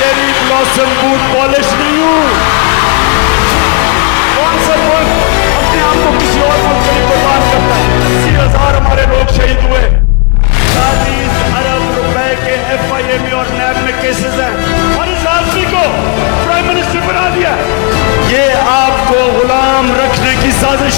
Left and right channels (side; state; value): right; quieter; 35.3 dB